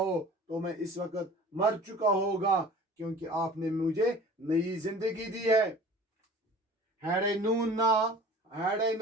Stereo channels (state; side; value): normal; both; correlation 0.43